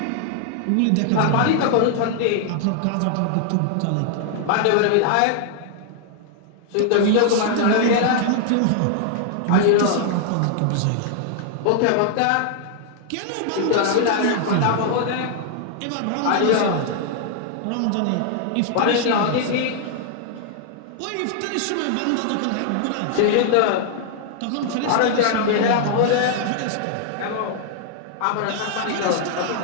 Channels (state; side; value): different; both; correlation 0.00